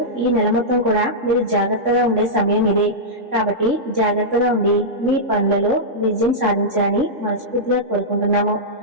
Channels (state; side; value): late; left; 3.6 ms